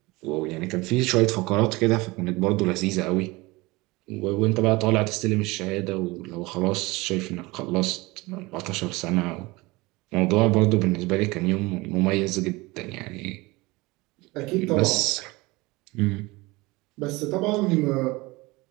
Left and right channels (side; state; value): left; quieter; 22.6 dB